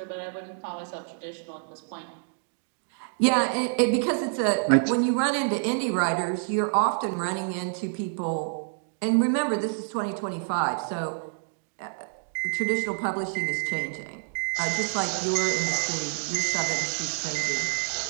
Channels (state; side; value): silent; left; digital silence